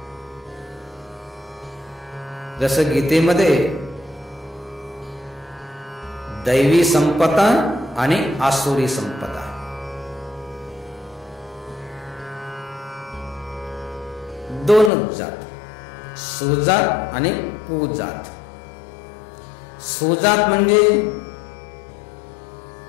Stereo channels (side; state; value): right; drops out; at 14.9 s